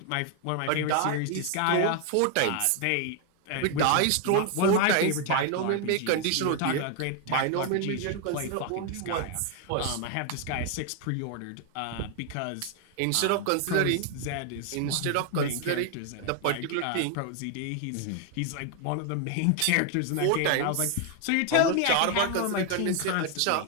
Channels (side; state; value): both; different; correlation 0.01